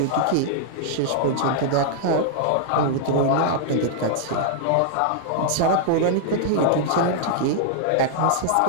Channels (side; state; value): both; different; correlation -0.01